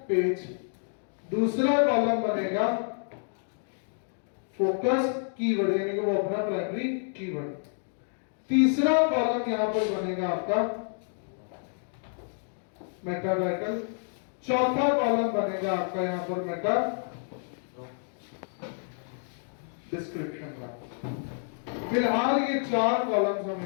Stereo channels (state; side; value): silent; right; digital silence